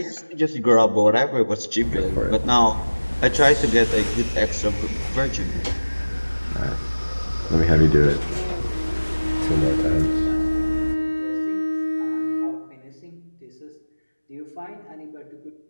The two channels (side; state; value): both; inverted; correlation -1.00